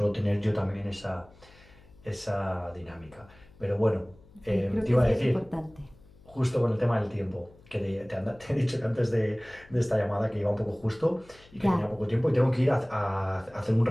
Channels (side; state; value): left; noise; hum, 25 dB below the sound